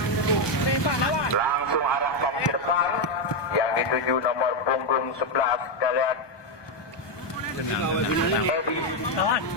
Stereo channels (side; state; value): right; late; 1.2 ms